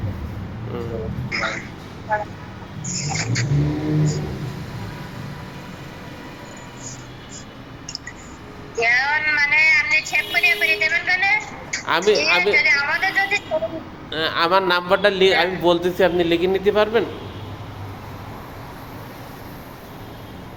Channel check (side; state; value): both; identical; correlation 1.00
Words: মানে আপনি সেভ করে দেবেন কেন। আমি আমাদের যদি আমার নাম্বারটা আমি বলতেছি, আপনি লিখে নিতে পারবেন?